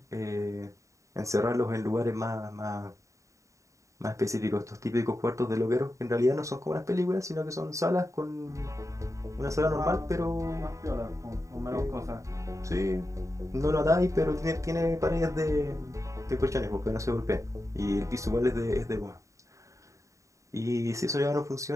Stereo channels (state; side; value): late; left; 0.15 ms